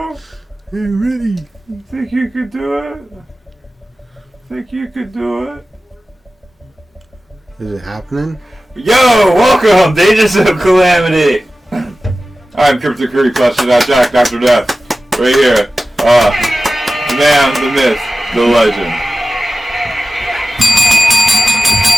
I'm ready. You think you could do it? Think you could do it? Is it happening? Yo, welcome to Agents of Calamity. I'm Crypto Curry, Jack, Dr. Death. Right here. The man, the myth, the legend.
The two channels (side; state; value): both; normal; correlation 0.95